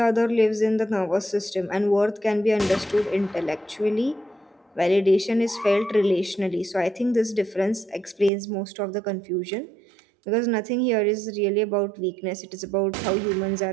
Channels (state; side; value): drops out; left; at 8.3 s